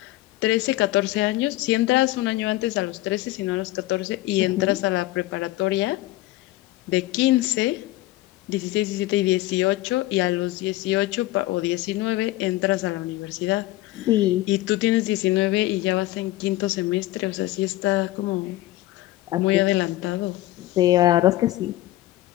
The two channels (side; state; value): right; quieter; 16.9 dB